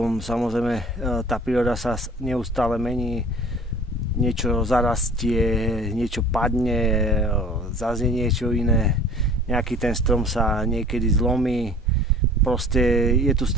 samozrejme tá príroda sa neustále mení, niečo zarastie, niečo padne, zase niečo iné, nejaký ten strom sa niekedy zlomí, proste je tu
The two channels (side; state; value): both; normal; correlation 0.47